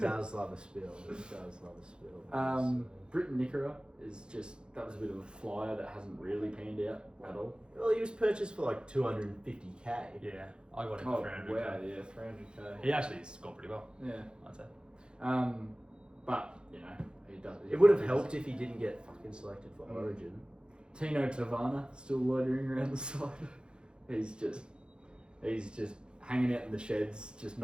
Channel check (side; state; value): left; late; 0.051 ms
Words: love a spill. Britton Nickera that was a bit of a flyer that hasn't really panned out at all. Well, he was purchased for like 250k. Yeah, I got him Oh, for 300. wow, yeah, 300k. He actually scored pretty well, Yeah. I'd say. But, he does. It would have helped if he didn't get fucking selected for Origin. Tino Tavana still loitering around the side. He's just hanging out in the sheds, just